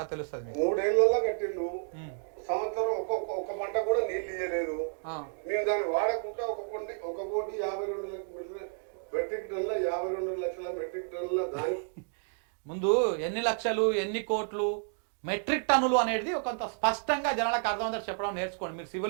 తెలుస్తుంది. 3 ఏళ్లలో కట్టిండు, సంవత్సరం ఒక పంట కూడా నీళ్ళు ఇయ్యలేదు. మేము దాన్ని వాడకుండా 1,52,00,000 మెట్రిక్ టన్నుల 52 లక్షల మెట్రిక్ టన్నుల దాని ముందు ఎన్ని లక్షలు, ఎన్ని కోట్లు, మెట్రిక్ టన్నులు అనేది కొంత స్పష్టంగా జనాలకు అర్థమవుతారు చెప్పడం నేర్చుకోండి. మీరు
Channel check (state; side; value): silent; left; digital silence